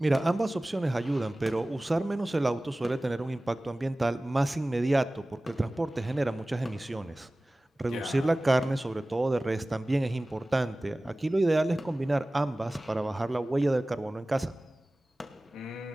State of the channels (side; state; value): both; normal; correlation 0.98